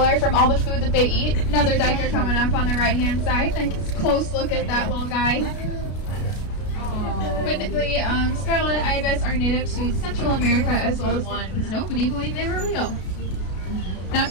from all the food that they eat. Another diker coming up on the right hand side. Take a close look at that little guy. But the scarlet ibis are native to Central America as well as one. Nobody believed they were real. Now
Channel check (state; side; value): late; right; 33 ms